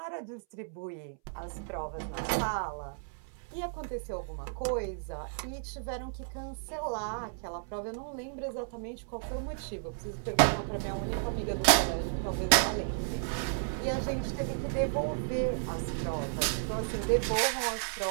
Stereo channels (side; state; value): left; silent; 56 dB below the other